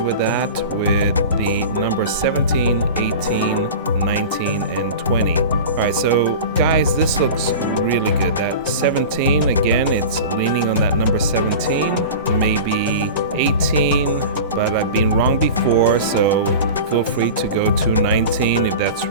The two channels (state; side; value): inverted; both; correlation -0.32